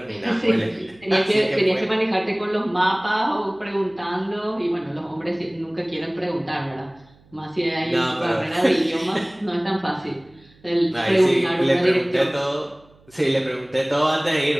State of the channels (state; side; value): noise; right; hum, 29 dB below the sound